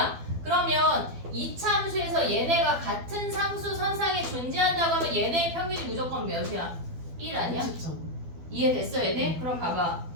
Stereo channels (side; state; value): left; late; 12 ms